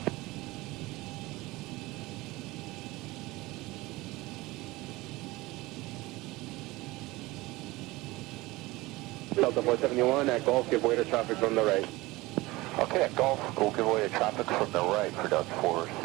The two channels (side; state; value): left; quieter; 20.6 dB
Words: Delta 471 at Golf, give way to traffic from the right. Okay, at Golf, we'll give way to traffic from the right for Delta